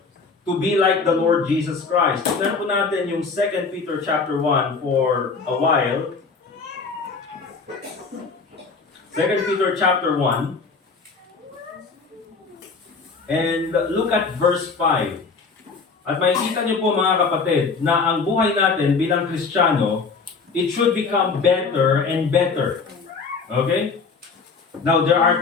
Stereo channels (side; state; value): right; quieter; 4.7 dB